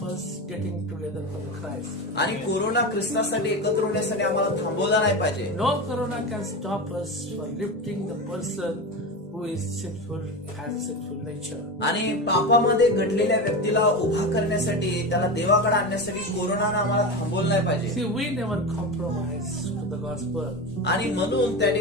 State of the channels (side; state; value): both; normal; correlation 0.22